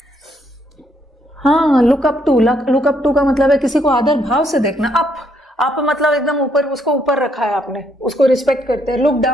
हाँ, लुक अप टू का मतलब है किसी को आदर भाव से देखना। अप मतलब एकदम ऊपर, उसको ऊपर रखा है आपने, उसको रिस्पेक्ट करते हैं। लुक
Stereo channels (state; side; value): normal; both; correlation 0.72